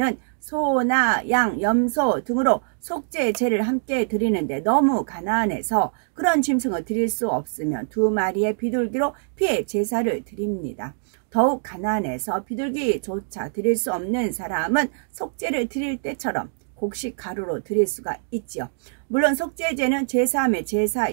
소나 양, 염소 등으로 속죄제를 함께 드리는데 너무 가난해서 그런 짐승을 드릴 수 없으면 2마리의 비둘기로 피해 제사를 드립니다. 더욱 가난해서 비둘기조차 드릴 수 없는 사람은 속죄를 드릴 때처럼 곡식 가루로 드릴 수가 있지요. 물론 속죄제는 제사함의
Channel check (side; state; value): left; silent; digital silence